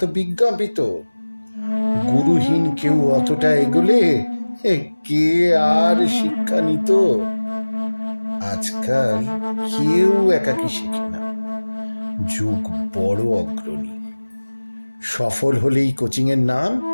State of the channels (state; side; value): inverted; both; correlation -1.00